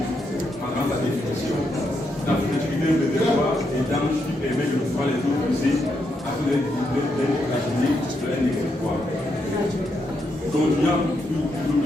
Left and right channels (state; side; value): normal; both; correlation 0.80